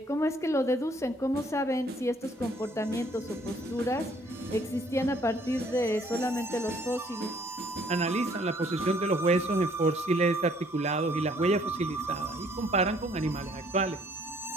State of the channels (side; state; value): both; normal; correlation 0.62